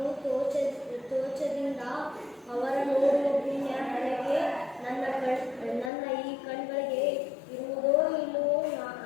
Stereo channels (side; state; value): right; drops out; at 5.9 s